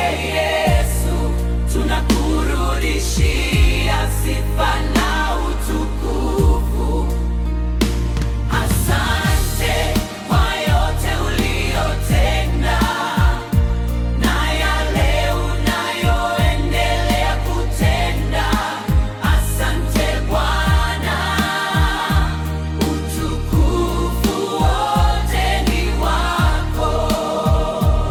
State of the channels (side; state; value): both; identical; correlation 1.00